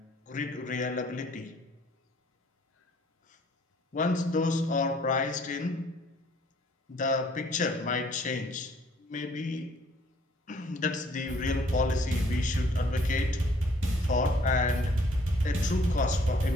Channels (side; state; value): both; normal; correlation 0.60